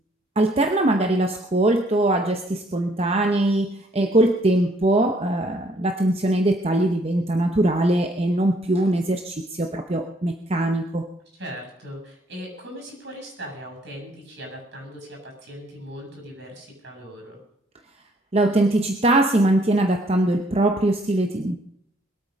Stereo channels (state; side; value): normal; both; correlation 0.65